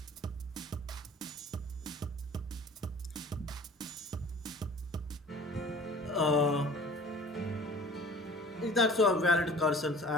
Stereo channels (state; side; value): normal; both; correlation 0.46